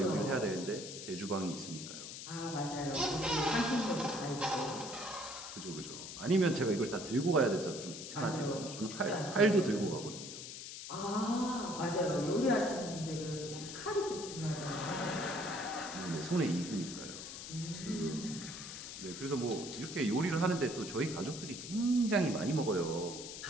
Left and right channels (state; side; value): noise; left; hiss, 9 dB below the sound